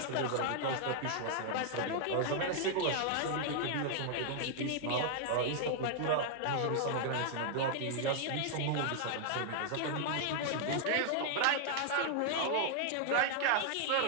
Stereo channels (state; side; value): different; both; correlation 0.00